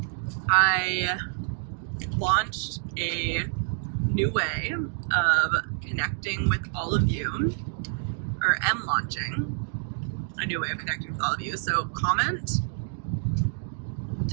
I launched a new way of connecting with all of you, or am launching a new way of connecting with all of you. So comment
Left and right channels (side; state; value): left; silent; digital silence